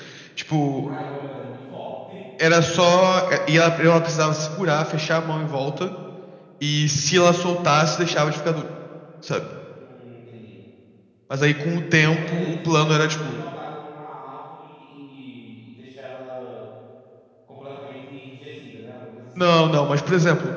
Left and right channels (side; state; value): both; identical; correlation 1.00